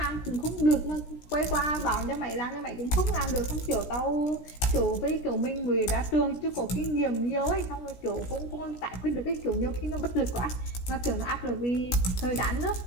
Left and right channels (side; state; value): right; late; 16 ms